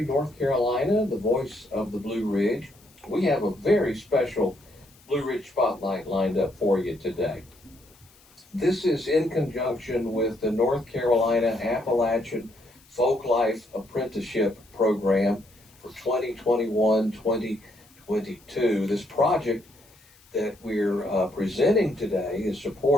North Carolina, the voice of the Blue Ridge. We have a very special Blue Ridge Spotlight lined up for you today. This is in conjunction with the North Carolina Appalachian Folklife Apprenticeship Program for 2021-2022. This project that we're presenting today is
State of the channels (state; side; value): noise; left; hiss, 28 dB below the sound